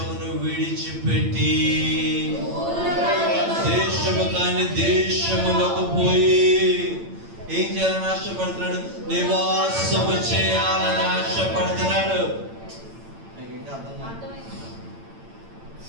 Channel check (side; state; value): left; late; 8.9 ms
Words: విడిచిపెట్టి దేశము కాని దేశములకు పోయి ఏం చేయాలని ఆశపడుతున్నాడు? నివాసము చేయాలని ఆశపడుతున్నాడు. మీకు ఇంకా అర్థం కాదు?